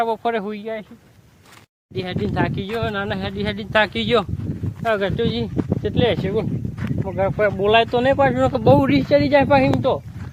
બપોરે હોઈ જાય છે. હેડીને થાકી ગયો, નાના હેડીને થાકી ગયો. ગટુજી કેટલે હશે બોલાય તો નહીં પાછું, બહુ રીસ ચડી જાય પાછી તો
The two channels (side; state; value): both; identical; correlation 1.00